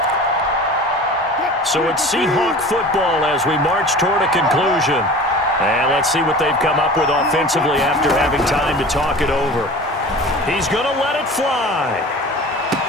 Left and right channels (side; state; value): both; normal; correlation 0.39